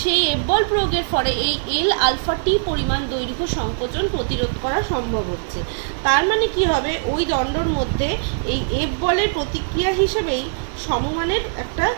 F বল প্রয়োগের ফলে এই L আলফা T পরিমাণ দৈর্ঘ্য সংকোচন প্রতিরোধ করা সম্ভব হচ্ছে। তার মানে কি হবে, ওই দণ্ডর মধ্যে এই F বলের প্রতিক্রিয়া হিসেবেই সমমানের একটা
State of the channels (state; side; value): silent; left; 56 dB below the other